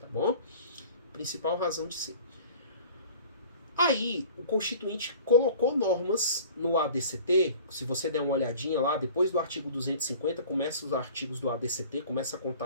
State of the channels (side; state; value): both; inverted; correlation -0.45